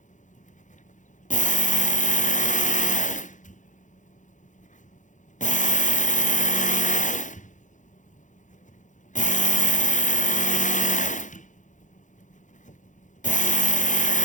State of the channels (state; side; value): late; right; 0.36 ms